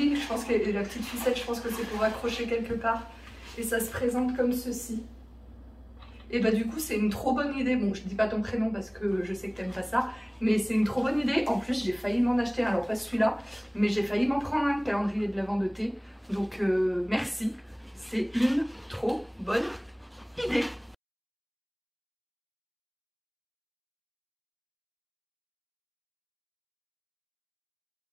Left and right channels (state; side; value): identical; both; correlation 1.00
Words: je pense que la petite ficelle, je pense que c'est pour accrocher quelque part. Et ça se présente comme ceci. Et bah du coup, c'est une trop bonne idée. Bon, je dis pas ton prénom parce que je sais que t'aimes pas ça. Mais c'est une trop bonne idée. En plus, j'ai failli m'en acheter un. Alors pas celui-là, mais j'ai failli m'en prendre un calendrier de l'Avent de thé. Donc merci. C'est une trop bonne idée.